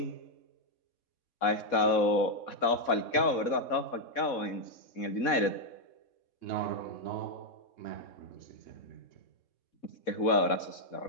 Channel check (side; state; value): right; late; 4.1 ms